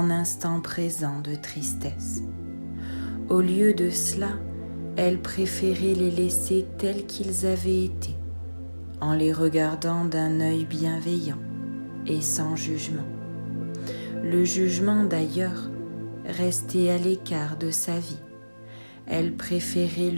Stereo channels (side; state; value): both; inverted; correlation -1.00